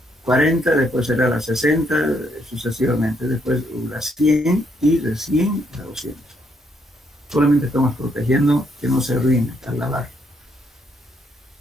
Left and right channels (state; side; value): normal; both; correlation 0.73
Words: 40, después será la 60, sucesivamente, después la 100 y de 100 a 200. Solamente estamos protegiendo que no se arruine al lavar.